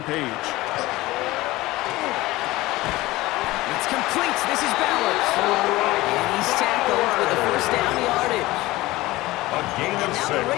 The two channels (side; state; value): right; quieter; 18.8 dB